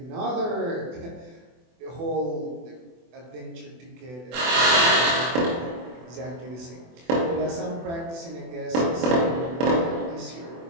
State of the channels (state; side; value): late; left; 24 ms